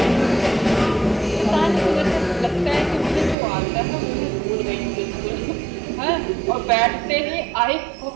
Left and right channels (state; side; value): drops out; left; at 3.4 s